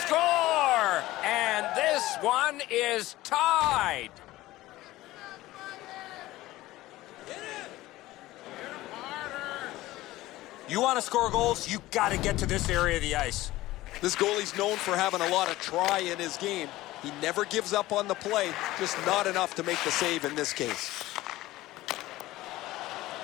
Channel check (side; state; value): right; quieter; 17.2 dB